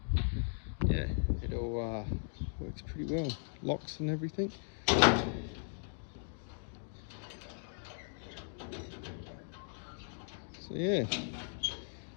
yeah, it all works pretty well. Locks and everything. So yeah,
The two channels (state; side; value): silent; right; digital silence